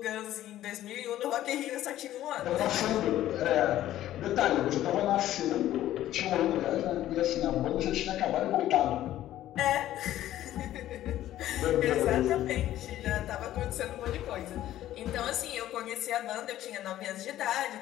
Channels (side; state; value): right; quieter; 13.4 dB